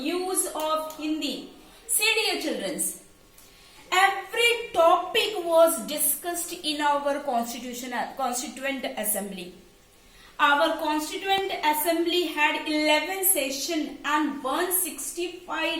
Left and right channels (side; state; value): both; identical; correlation 1.00